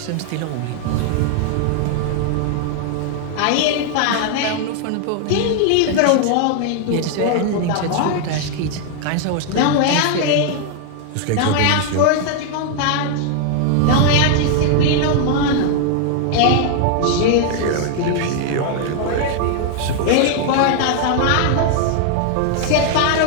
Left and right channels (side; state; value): both; different; correlation 0.00